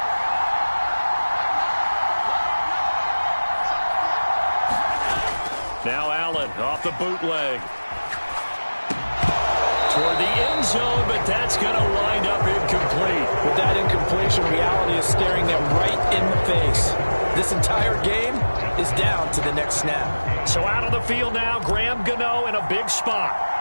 Now Allen off the bootleg. Toward the end zone, but that's going to wind up incomplete. With that incompletion, reality is staring them right in the face. This entire game is down to the next snap. So out of the field now, Graham Gano in a big spot.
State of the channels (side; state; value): both; inverted; correlation -1.00